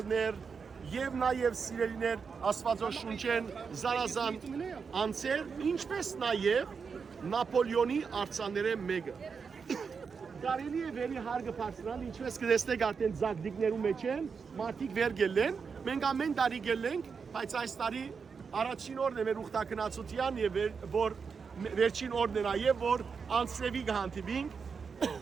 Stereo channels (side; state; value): left; quieter; 5.7 dB